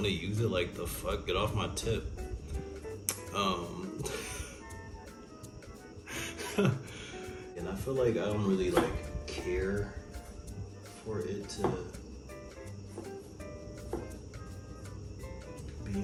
to use it. Like the fuck, get off my tip. And I feel like I don't really like care for it to be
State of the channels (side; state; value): both; identical; correlation 1.00